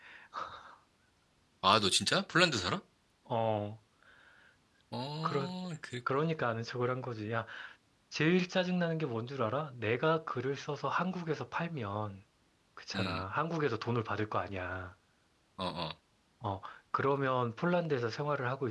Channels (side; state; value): both; identical; correlation 1.00